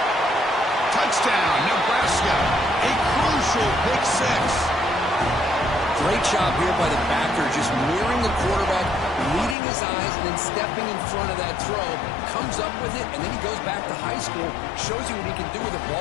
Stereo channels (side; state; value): right; drops out; at 9.6 s